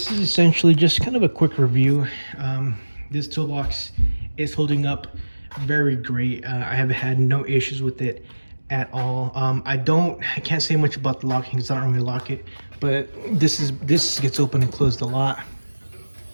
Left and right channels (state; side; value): inverted; both; correlation -1.00